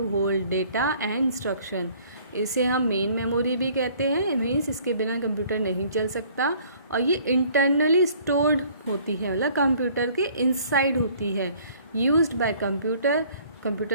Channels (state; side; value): inverted; both; correlation -0.56